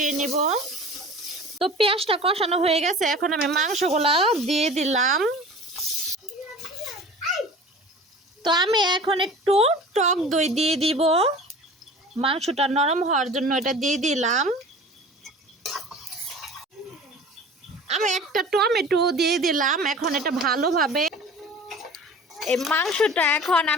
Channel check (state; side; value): normal; both; correlation 0.40